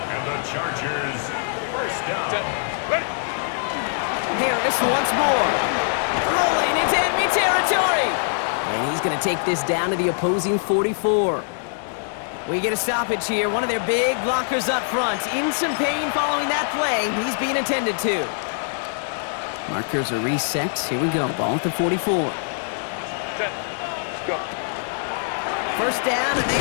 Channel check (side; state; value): right; silent; digital silence